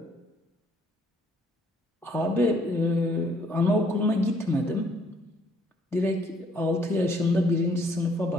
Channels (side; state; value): both; normal; correlation 0.65